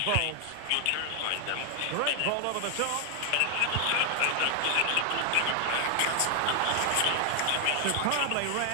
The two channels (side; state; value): both; different; correlation 0.00